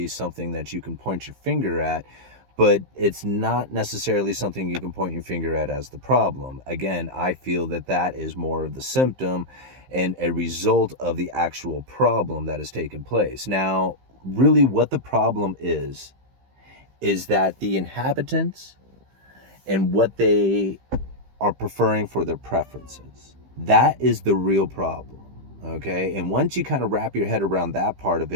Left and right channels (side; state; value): left; late; 15 ms